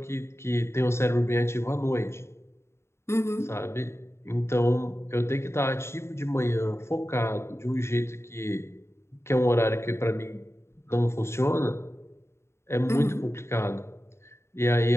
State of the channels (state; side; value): late; right; 0.13 ms